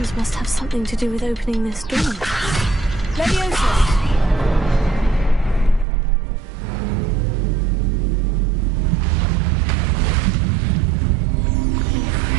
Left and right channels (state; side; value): drops out; left; at 5.9 s